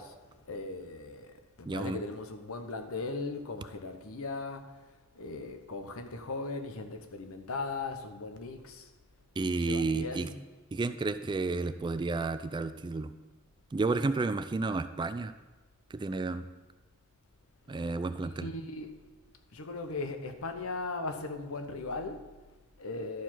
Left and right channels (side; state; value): both; normal; correlation 0.43